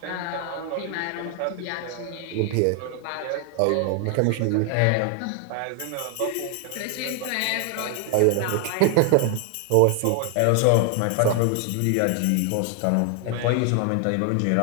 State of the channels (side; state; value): both; different; correlation 0.00